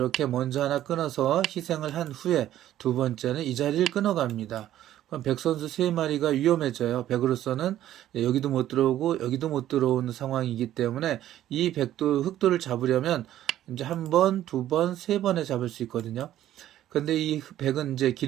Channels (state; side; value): quieter; left; 12.6 dB